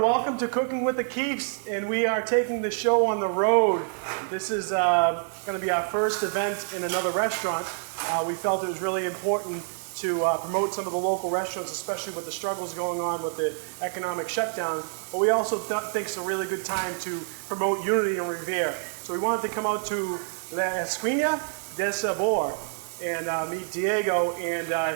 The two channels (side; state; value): left; silent; 60 dB below the other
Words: to Cooking with the Keefes, and we are taking the show on the road. This is going to be our first event in another restaurant. We felt it was really important to promote some of the local restaurants, especially with the struggles going on with the economic shutdown. But we also think it's a really good time to promote Unity in Revere. So we wanted to come out to Esquina del Sabor and meet Diego